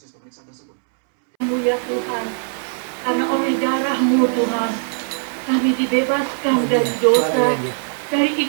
pemeriksaan tersebut? Ya Tuhan, karena oleh darah-Mu Tuhan, kami dibebaskan dari dosa, dari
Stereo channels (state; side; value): silent; left; 66 dB below the other